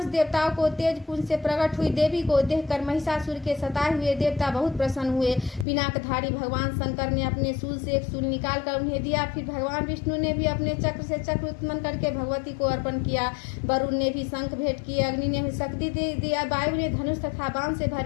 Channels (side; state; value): right; drops out; at 5.7 s